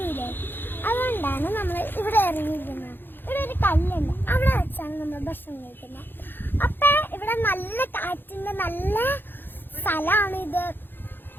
അതുകൊണ്ടാണ് നമ്മൾ ഇവിടെ ഇറങ്ങിയിരിക്കുന്നത്. ഇവിടെ ഒരു കല്ലുണ്ട്, അവിടെ വെച്ചാണ് നമ്മൾ ഭക്ഷണം കഴിക്കുന്നത്. അപ്പൊ ഇവിടെ നല്ല കാറ്റിന്റെ നല്ല സ്ഥലമാണ് ഇത്.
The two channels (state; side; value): late; right; 0.099 ms